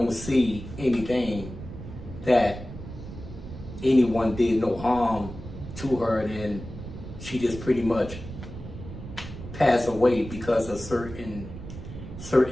see anything that anyone did no harm to her, and she just pretty much passed away because of certain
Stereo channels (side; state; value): right; noise; rumble, 11 dB below the sound